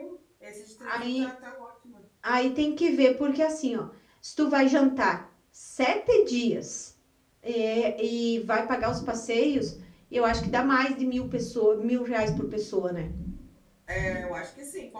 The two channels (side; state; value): both; identical; correlation 1.00